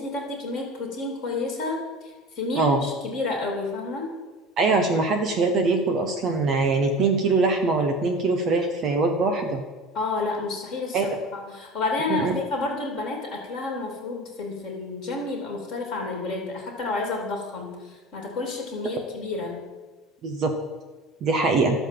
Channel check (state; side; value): normal; both; correlation 0.35